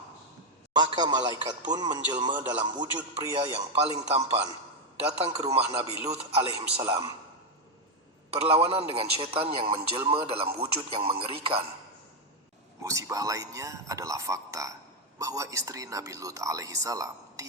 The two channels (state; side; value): normal; both; correlation 0.05